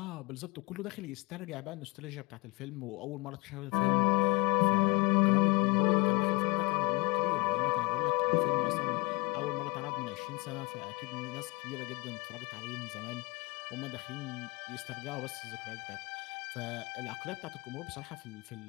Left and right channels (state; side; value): quieter; right; 27.8 dB